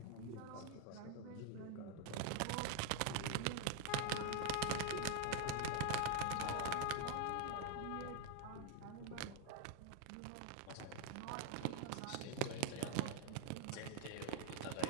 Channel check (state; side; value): different; both; correlation 0.01